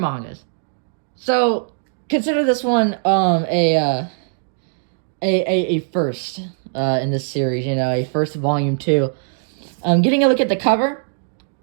So consider this one a first in this series, a first Volume 2. Getting a look at the cover,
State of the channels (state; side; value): silent; left; digital silence